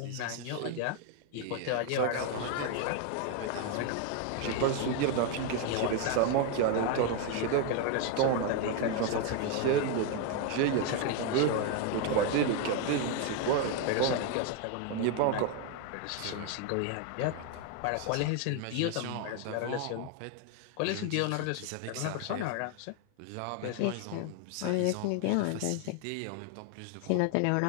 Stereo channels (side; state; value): both; different; correlation 0.01